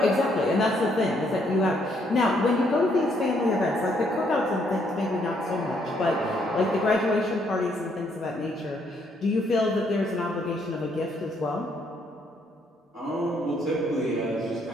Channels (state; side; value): normal; both; correlation 0.71